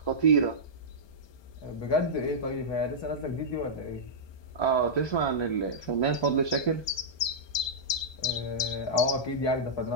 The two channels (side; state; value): right; late; 1.2 ms